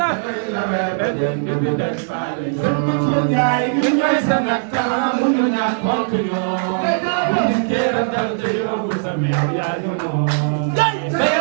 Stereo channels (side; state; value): left; silent; 66 dB below the other